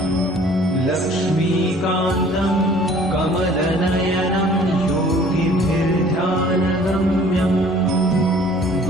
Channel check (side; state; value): both; normal; correlation 0.53